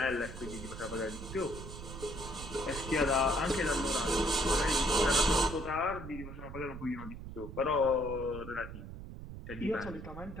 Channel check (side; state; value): right; noise; rumble, 10 dB below the sound